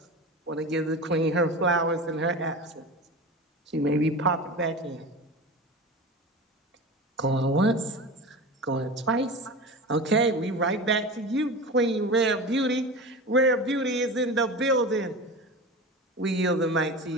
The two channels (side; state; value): both; normal; correlation 0.30